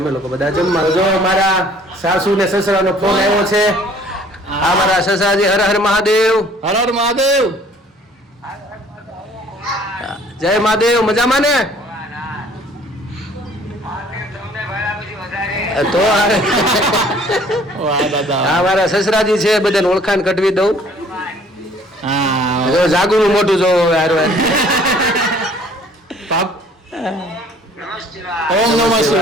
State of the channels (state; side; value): normal; both; correlation 0.56